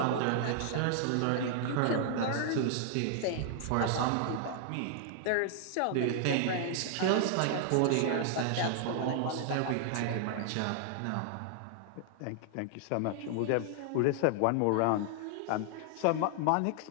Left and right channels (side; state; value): both; different; correlation 0.00